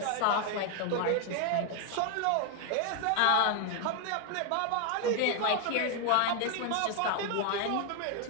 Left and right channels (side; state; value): both; different; correlation 0.01